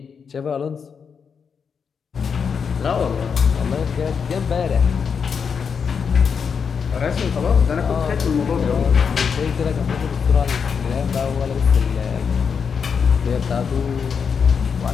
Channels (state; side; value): quieter; right; 6.3 dB